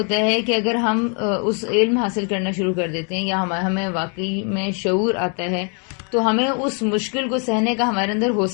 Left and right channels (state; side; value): quieter; right; 38.7 dB